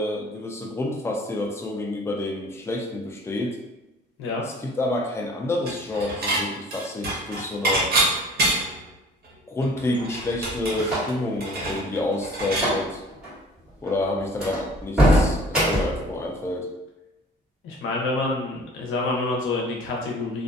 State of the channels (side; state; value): both; normal; correlation 0.49